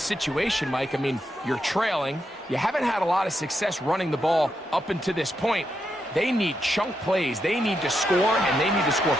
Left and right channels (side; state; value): both; normal; correlation 0.83